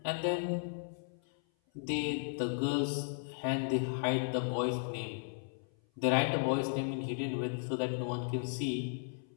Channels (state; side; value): silent; right; 54 dB below the other